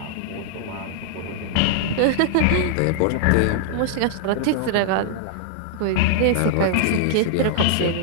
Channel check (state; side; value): different; both; correlation -0.01